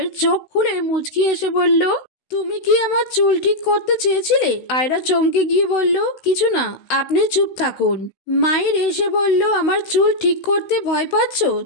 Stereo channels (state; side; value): late; right; 16 ms